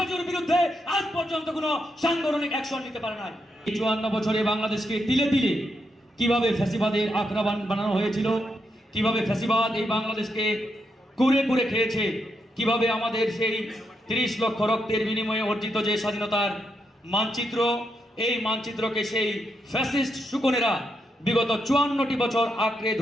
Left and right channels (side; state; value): both; normal; correlation 0.82